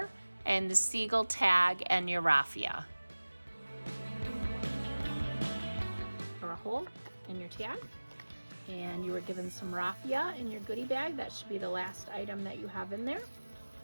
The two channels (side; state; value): both; inverted; correlation -1.00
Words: and the seagull tag and your raffia. Or a hole in your tag. And you were given some raffia in your goodie bag. That should be the last item that you have in there.